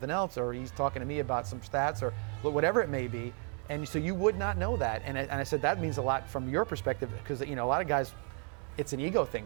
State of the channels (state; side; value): quieter; left; 39.7 dB